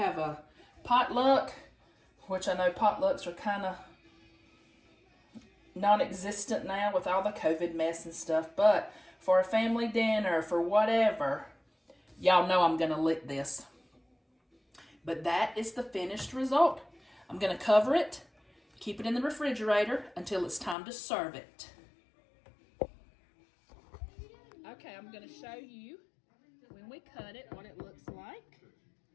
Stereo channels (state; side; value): drops out; right; at 20.8 s